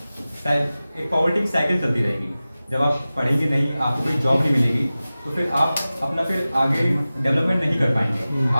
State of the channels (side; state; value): both; inverted; correlation -0.96